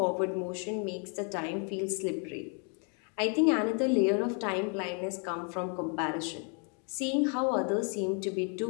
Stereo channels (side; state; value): right; quieter; 39.7 dB